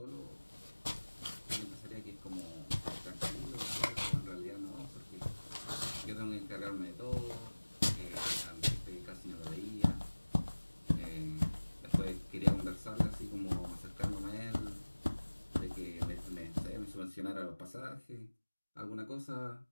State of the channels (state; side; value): inverted; both; correlation -1.00